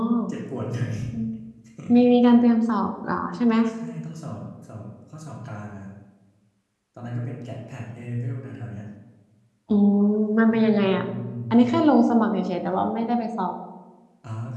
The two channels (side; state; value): both; identical; correlation 1.00